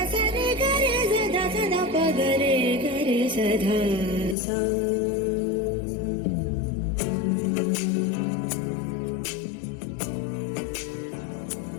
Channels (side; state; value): right; drops out; at 4.4 s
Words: సరి గరి సదా సదా ప గరి గరి సధా సా